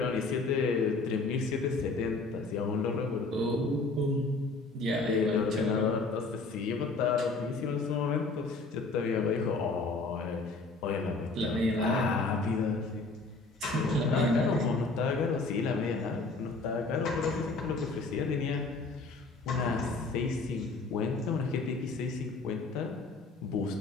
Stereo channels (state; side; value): quieter; right; 3.6 dB